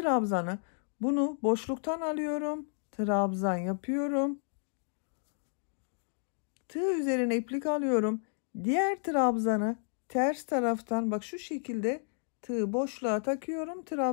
bunu boşluktan alıyorum. Trabzan yapıyorum. Tığ üzerine iplik alıyorum. Diğer trabzanı ters taraftan bak şu şekilde tığı boşluğa takıyorum.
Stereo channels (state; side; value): silent; right; digital silence